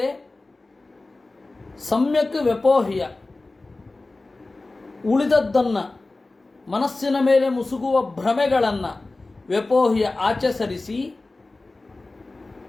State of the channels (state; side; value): quieter; right; 3.2 dB